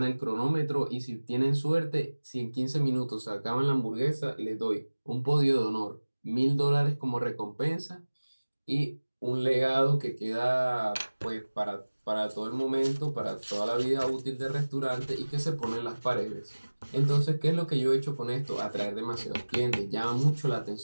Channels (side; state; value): both; inverted; correlation -1.00